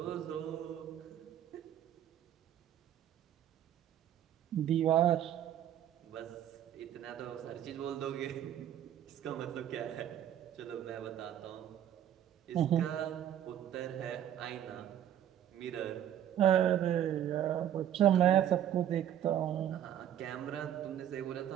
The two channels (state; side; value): quieter; left; 10.9 dB